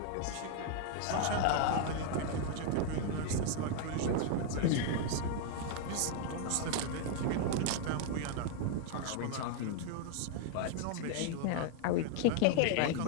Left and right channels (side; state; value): both; different; correlation 0.00